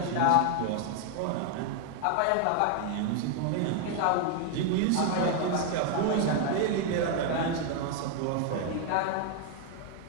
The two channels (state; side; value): different; both; correlation 0.00